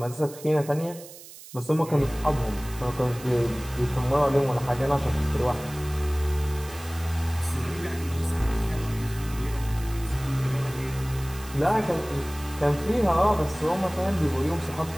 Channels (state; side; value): noise; right; hiss, 17 dB below the sound